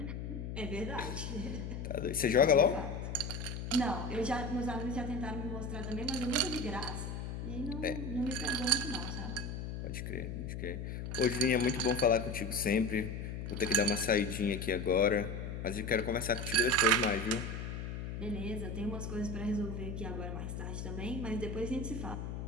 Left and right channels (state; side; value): noise; left; hum, 5 dB below the sound